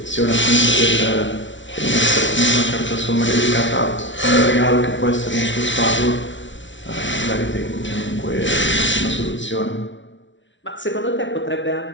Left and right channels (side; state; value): right; late; 0.55 ms